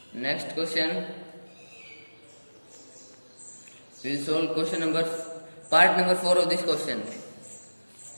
next question, we will solve part number 4 of this question.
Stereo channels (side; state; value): both; inverted; correlation -1.00